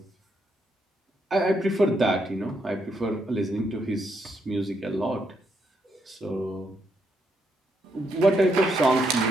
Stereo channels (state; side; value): normal; both; correlation 0.77